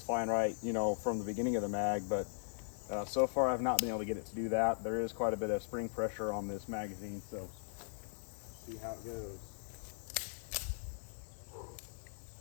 fine right, you know, from the beginning of the mag, but so far I've not been able to get it to do that. There is quite a bit of spring pressure on this magazine, so see how it goes.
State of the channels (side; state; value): right; silent; 52 dB below the other